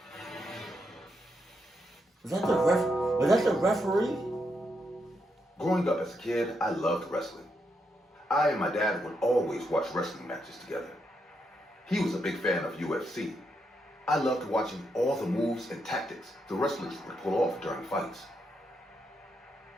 Was that the referee? Growing up as a kid, I loved wrestling. I and my dad would always watch wrestling matches together. He was a big fan of UFC. I loved watching all the moves and tactics the wrestlers would pull off during fights.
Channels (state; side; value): normal; both; correlation 0.81